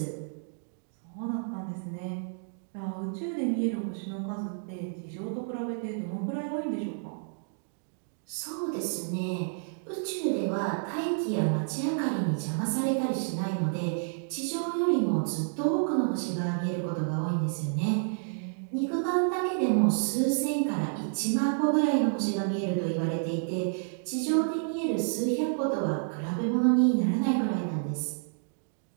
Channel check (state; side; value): silent; left; digital silence